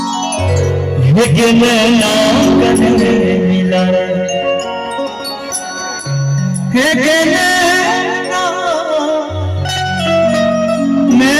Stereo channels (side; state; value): both; identical; correlation 1.00